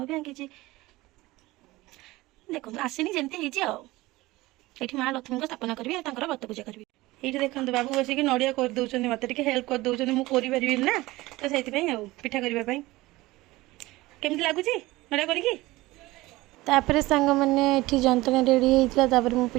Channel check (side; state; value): left; quieter; 19.5 dB